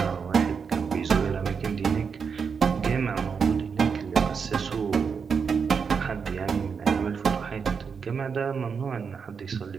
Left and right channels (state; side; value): quieter; left; 6.0 dB